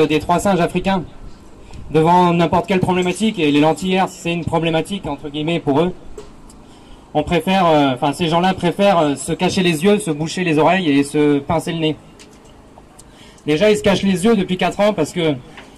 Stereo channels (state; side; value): identical; both; correlation 1.00